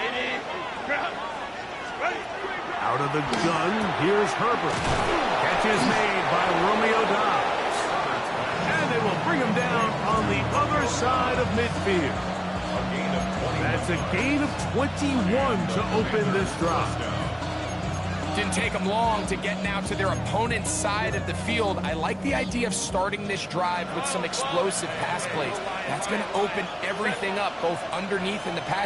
Out of the gun, here's Herbert. Catch is made by Romeo Doubs. And they will bring him down on the other side of midfield. That's a gain of 21 to open this drive. Didn't take them long to get now to their opponent's side of the field. I like the idea of starting this drive with some explosive pass plays. That's going to open everything up, both underneath in the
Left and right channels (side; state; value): both; identical; correlation 1.00